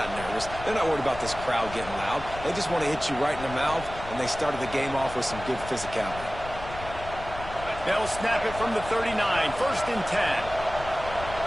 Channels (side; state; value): left; noise; rumble, 12 dB below the sound